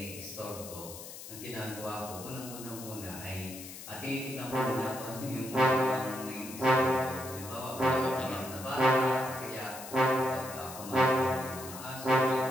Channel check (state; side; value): noise; left; hiss, 12 dB below the sound